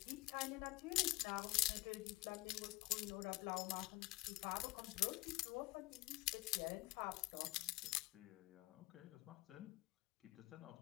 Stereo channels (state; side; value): quieter; right; 21.2 dB